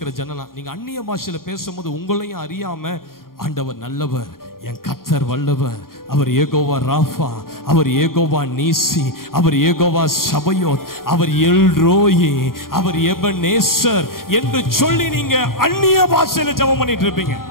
ஜனலாம். நீங்க அந்நிய பாஷையில பேசும்போது உங்களையும் அறியாம ஆண்டவர் நல்லவர், என் கர்த்தர் வல்லவர், அவர் ஏகோவா ராஃபா, அவர் ஏகோவா நீசி, அவர் ஏகோவா சபயோத், அவர் எல்ரோயி, அவர் எபனேசர் என்று சொல்லி நீங்க அந்நிய பாஷையில ஜெபம் பண்ணிட்டு இருப்பீங்க.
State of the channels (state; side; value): late; right; 0.92 ms